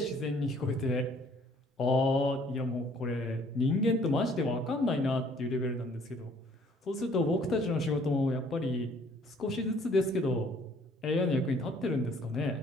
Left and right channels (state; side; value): normal; both; correlation 0.59